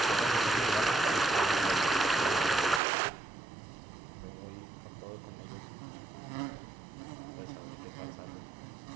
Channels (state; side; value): drops out; left; at 2.8 s